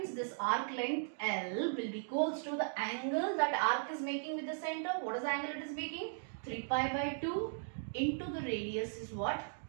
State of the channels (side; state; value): left; silent; digital silence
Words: this arc length L will be equals to the angle that arc is making with the center. What is the angle it is making? 3 pi by 2 into the radius is what?